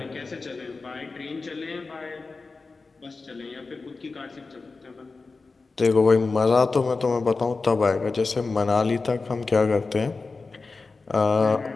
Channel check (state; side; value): quieter; right; 4.0 dB